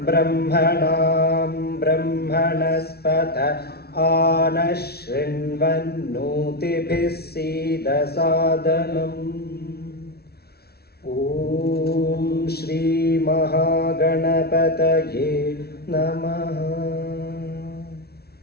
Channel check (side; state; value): right; late; 0.45 ms